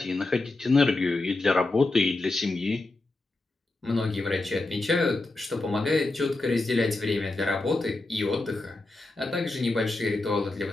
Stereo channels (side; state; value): right; quieter; 3.0 dB